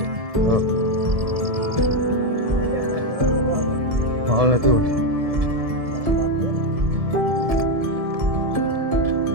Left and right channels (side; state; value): left; late; 1.7 ms